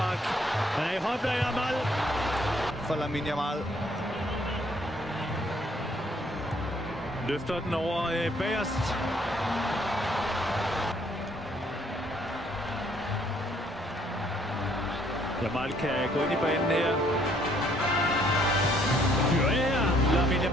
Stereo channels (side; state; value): both; normal; correlation 0.65